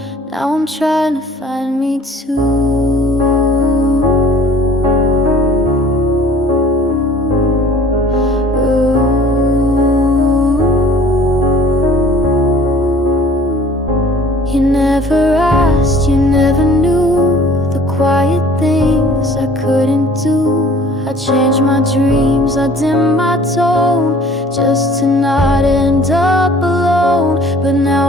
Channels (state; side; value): normal; both; correlation 0.51